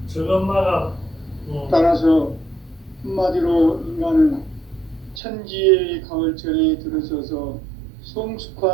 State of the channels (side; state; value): left; drops out; at 5.2 s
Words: 따라서 한마디로 인간은 천지의 가을철에 들어서서